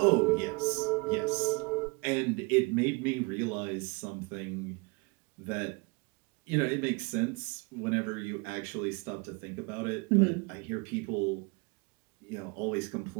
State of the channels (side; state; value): left; quieter; 28.9 dB